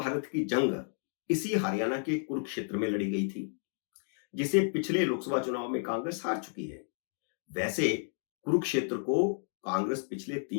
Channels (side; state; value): right; silent; 56 dB below the other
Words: की जंग इसी हरियाणा के कुरुक्षेत्र में लड़ी गई थी, जिसे पिछले लोकसभा चुनाव में कांग्रेस हार चुकी है। वैसे कुरुक्षेत्र को कांग्रेस पिछले